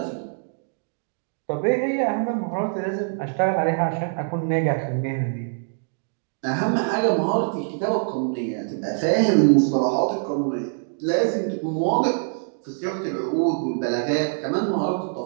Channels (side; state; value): left; silent; digital silence